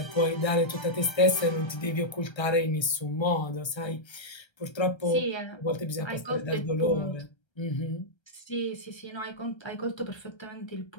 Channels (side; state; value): right; late; 1.3 ms